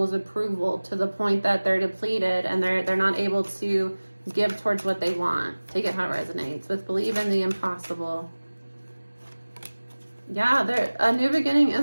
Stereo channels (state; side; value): inverted; both; correlation -1.00